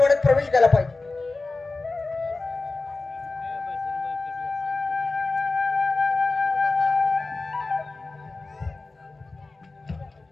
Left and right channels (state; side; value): quieter; right; 3.5 dB